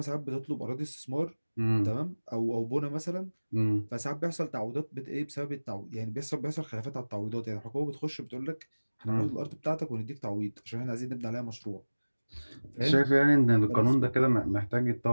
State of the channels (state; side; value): inverted; both; correlation -1.00